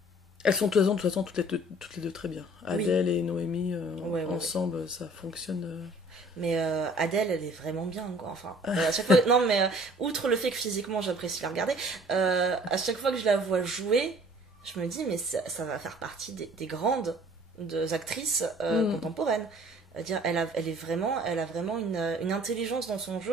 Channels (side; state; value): both; normal; correlation 0.53